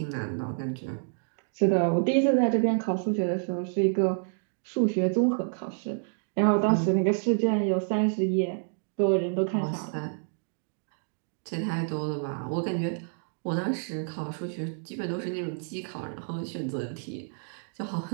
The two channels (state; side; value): silent; left; digital silence